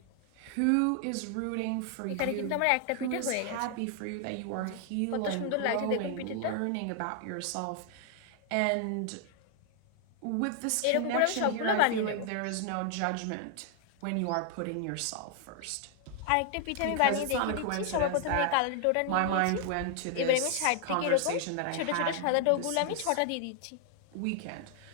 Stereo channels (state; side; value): different; both; correlation 0.00